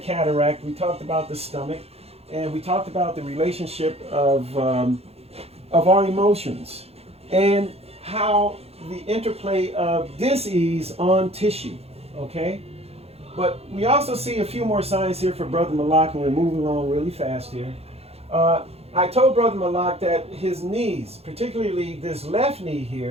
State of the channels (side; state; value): left; late; 0.29 ms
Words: cataract, we talked about the stomach, and we talked about the relationship of our emotions and how the interplay of dis-ease on tissue, okay? But we also see a few more signs here for Brother Malak, and we're moving along really fast here. I told Brother Malak that his knees, particularly this left knee